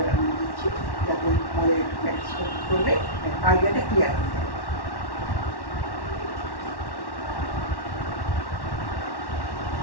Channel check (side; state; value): right; late; 1.1 ms